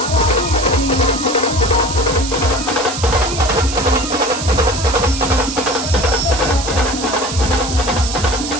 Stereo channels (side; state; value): right; noise; hiss, 7 dB below the sound